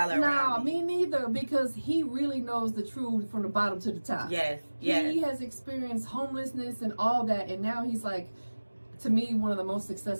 around me neither, because he really knows the truth from the bottom to the top. Yes. He has experienced homelessness and all that, and now he's to me, one of the most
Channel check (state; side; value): inverted; both; correlation -1.00